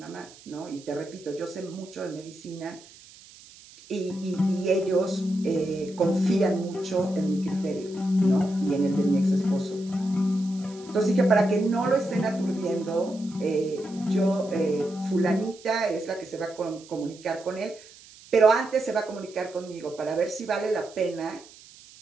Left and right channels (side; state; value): right; noise; hiss, 22 dB below the sound